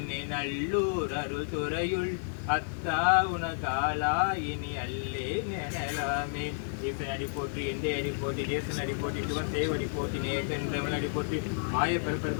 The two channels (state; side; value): silent; right; 56 dB below the other